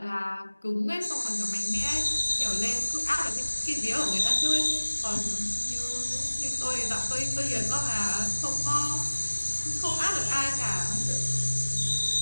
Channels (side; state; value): both; inverted; correlation -1.00